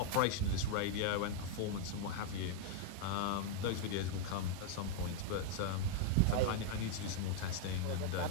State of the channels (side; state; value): both; different; correlation 0.00